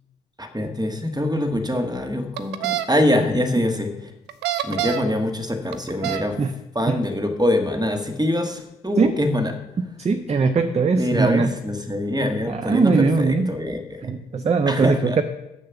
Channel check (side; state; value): both; normal; correlation 0.74